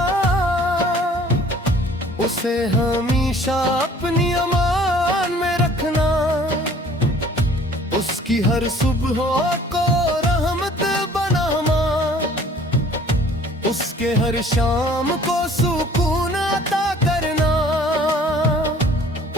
उसे हमेशा अपनी अमान में रखना। उसकी हर सुबह को रहमत बनाना, उसके हर शाम को सुकून अता करना।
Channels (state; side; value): normal; both; correlation 0.53